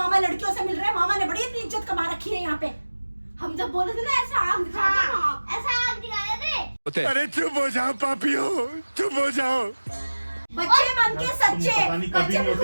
लड़कियों से मिल रहे हैं, मामा ने बड़ी इतनी इज्जत कमा रखी है यहाँ पे। हम जब बोले थे ना ऐसा आग दिखा दे, ऐसा आग दिखाया थे। अरे चुप हो जाओ पापियो, चुप हो जाओ। बच्चे मन के सच्चे, बच्चे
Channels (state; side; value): inverted; both; correlation -1.00